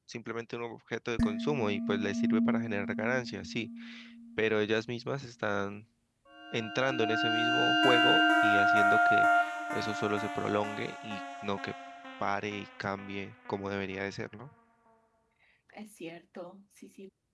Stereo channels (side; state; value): both; identical; correlation 1.00